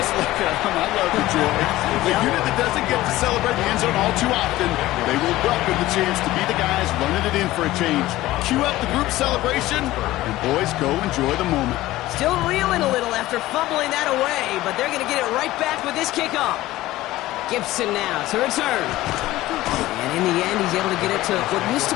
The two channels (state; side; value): quieter; right; 16.7 dB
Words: look at them. I love the joy. The unit that doesn't get to celebrate the end zone all too often, they will welcome the chance to be the guys running it in for a change. Cue up the group celebration, and boys, go enjoy the moment. Still reeling a little after fumbling that away, but they're going to get it right back with this kickoff. Gibson now to return. And in the end, he's able to get it to what used to